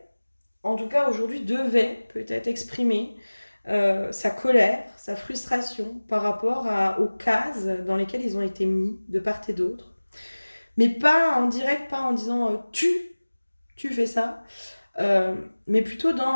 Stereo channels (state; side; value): inverted; both; correlation -1.00